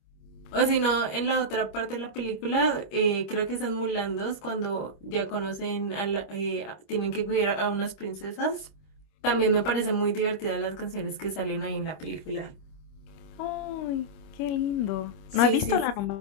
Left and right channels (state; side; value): late; right; 25 ms